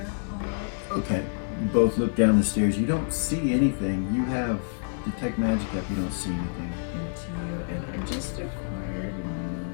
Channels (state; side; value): silent; right; digital silence